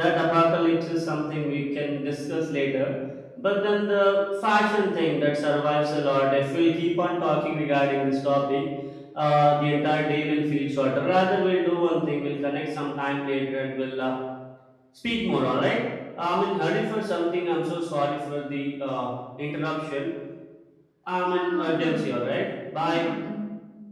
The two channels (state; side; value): identical; both; correlation 1.00